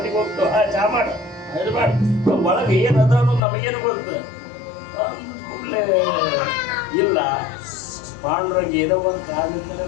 ಹೋಗ್ತು. ಚಾ ಮಾಡು ಇದು ಮಾಡಿ ಒಳಗೆ ಏನು ಅದ ಅನ್ನೋದು ನಮಗೇನು ಗೊತ್ತು. ಕೂಡಲೇ ಇಲ್ಲ ಪಾಂಡ್ರಂಗ ಏನೋ ಒಂದು ಕಾರಣದಿಂದಲೇ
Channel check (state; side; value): drops out; right; at 3.4 s